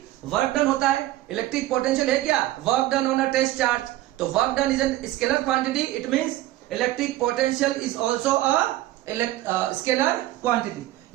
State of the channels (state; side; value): quieter; left; 15.5 dB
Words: वर्क डन होता है। इलेक्ट्रिक पोटेंशियल है क्या, work done on a test charge. तो work done is a scalar quantity, it means electric potential is also a scalar quantity.